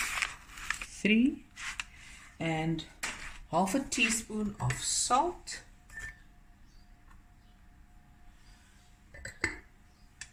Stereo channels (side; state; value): both; identical; correlation 1.00